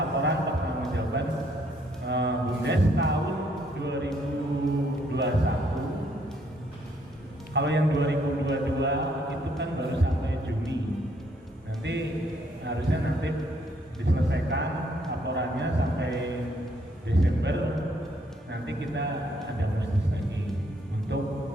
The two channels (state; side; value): normal; both; correlation 0.69